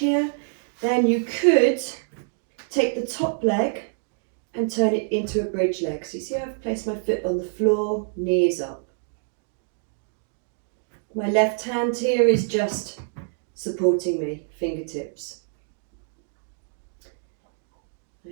then you could take the top leg and turn it into a bridge leg. So you see I've placed my foot on the floor, knees up. My left hand here is just supporting me, fingertips.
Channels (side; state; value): left; silent; digital silence